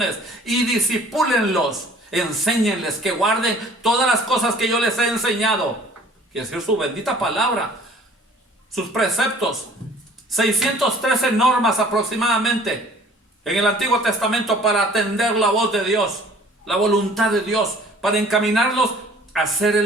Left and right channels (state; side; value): normal; both; correlation 0.52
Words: y discipúlenlos, enséñenles que guarden todas las cosas que yo les he enseñado, que es decir, su bendita palabra, sus preceptos, 613 normas aproximadamente en el Antiguo Testamento para atender la voz de Dios, la voluntad de Dios, para encaminarlos hacer